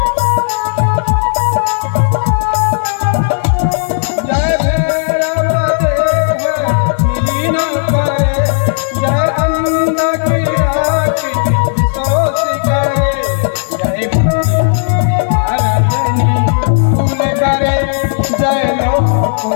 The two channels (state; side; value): silent; right; digital silence